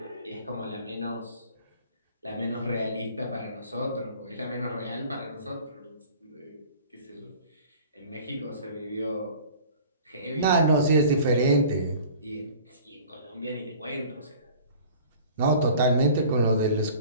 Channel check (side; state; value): both; inverted; correlation -0.45